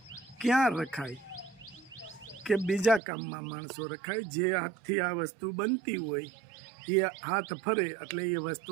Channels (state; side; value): drops out; left; at 3.0 s